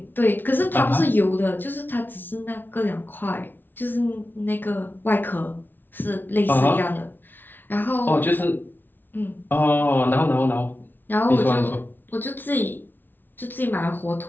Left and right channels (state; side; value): late; right; 0.093 ms